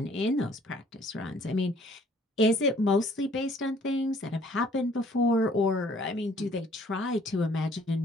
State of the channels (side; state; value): both; normal; correlation 0.58